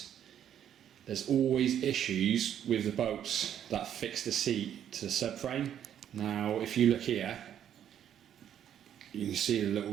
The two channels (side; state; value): left; quieter; 9.9 dB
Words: there's always issues with the bolts that fix the seat to the subframe. Now if you look here, you can see the little